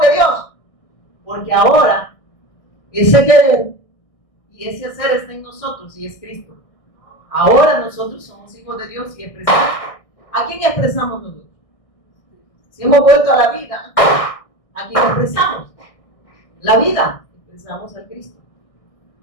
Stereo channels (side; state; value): right; late; 1.6 ms